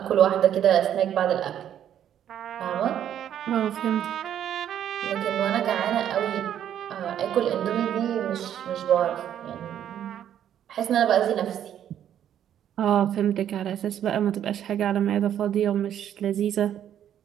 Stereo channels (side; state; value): left; quieter; 10.2 dB